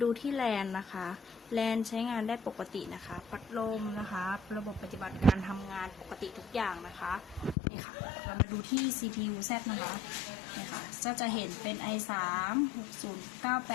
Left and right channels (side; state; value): right; drops out; at 7.6 s